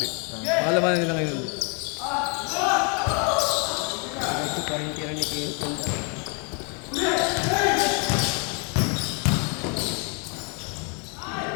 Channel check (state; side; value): quieter; right; 36.3 dB